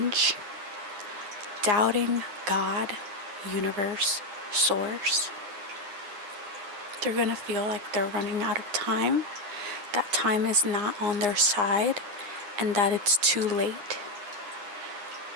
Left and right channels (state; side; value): late; left; 9.8 ms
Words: doubting God, universe, source. They're going to feel like they're running out of time, that time is not on their side, and that it's too late.